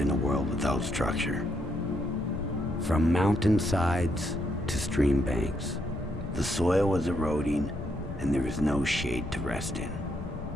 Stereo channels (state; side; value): noise; left; rumble, 11 dB below the sound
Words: in a world without structure. From mountainsides to stream banks, the soil was eroding and there was no shade to rest in.